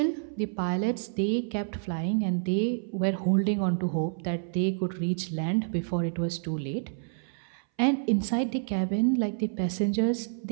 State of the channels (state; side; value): silent; left; 59 dB below the other